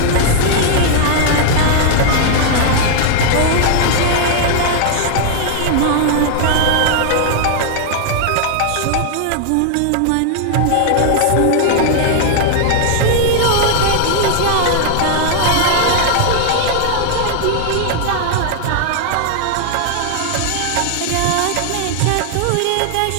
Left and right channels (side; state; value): both; different; correlation 0.00